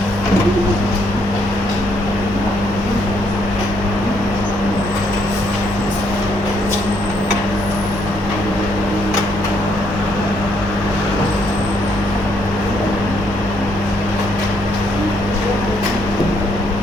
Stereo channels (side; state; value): both; normal; correlation 0.71